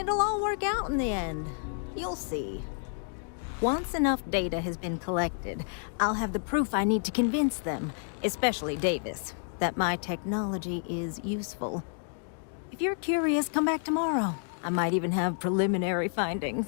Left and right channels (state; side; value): silent; right; 58 dB below the other